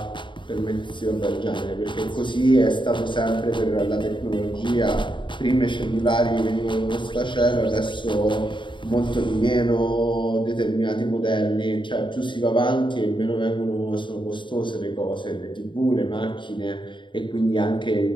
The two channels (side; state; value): right; late; 0.23 ms